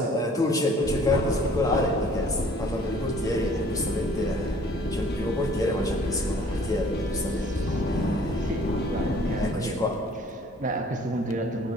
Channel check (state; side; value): normal; both; correlation 0.54